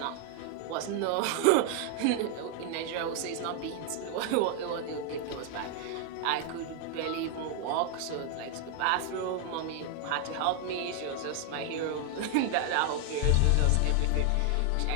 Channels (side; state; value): both; different; correlation 0.00